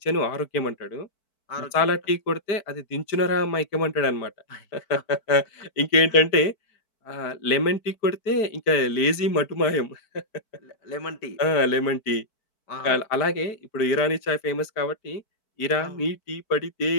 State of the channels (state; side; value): late; right; 4.6 ms